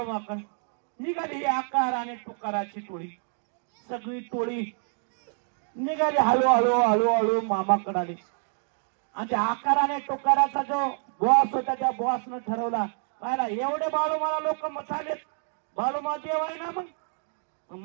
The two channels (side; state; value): left; silent; 59 dB below the other